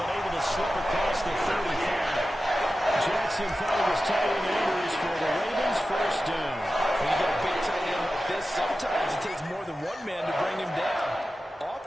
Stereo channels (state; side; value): normal; both; correlation 0.93